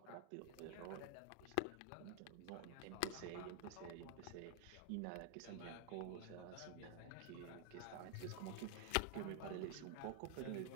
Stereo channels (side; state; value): both; different; correlation 0.00